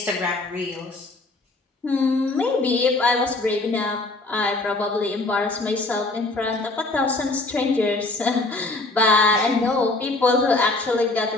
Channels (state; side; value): quieter; right; 3.1 dB